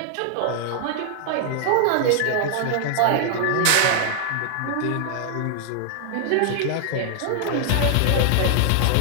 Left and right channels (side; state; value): both; different; correlation 0.00